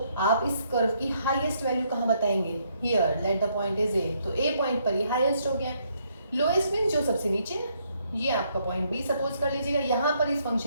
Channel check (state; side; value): inverted; both; correlation -0.72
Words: आप इस कर्व की हाईएस्ट वैल्यू कहाँ बताएंगे, here let the point is a, तो ए पॉइंट पर ये हाईएस्ट हो गया। लोएस्ट मीन्स जो सबसे नीचे है, ये आपका पॉइंट बी सपोज कर लीजिएगा, यहाँ पर इस